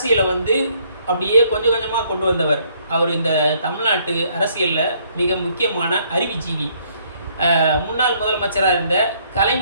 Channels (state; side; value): inverted; both; correlation -0.66